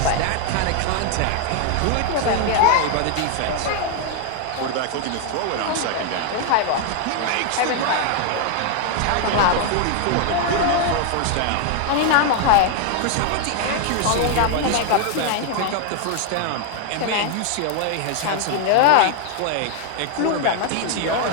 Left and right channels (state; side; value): different; both; correlation 0.00